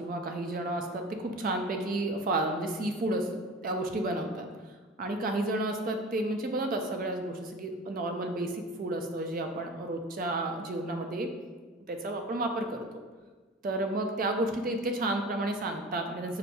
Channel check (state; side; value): normal; both; correlation 0.37